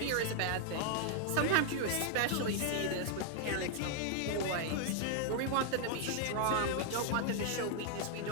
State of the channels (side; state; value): both; different; correlation 0.00